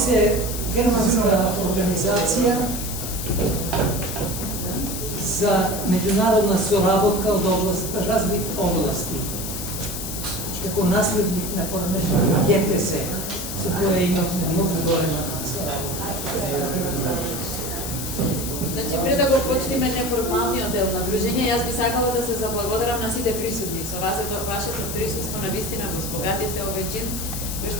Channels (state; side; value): noise; left; hiss, 6 dB below the sound